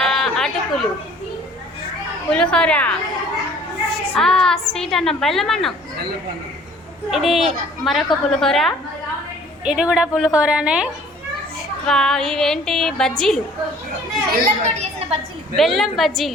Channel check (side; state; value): both; normal; correlation 0.53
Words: అటుకులు, పులిహోర, స్వీట్ అన్నం, బెల్లం అన్నం. ఇది మరొక పులిహోర, ఇది కూడా పులిహోరనే. ఇవేంటి బజ్జీలు, బెల్లం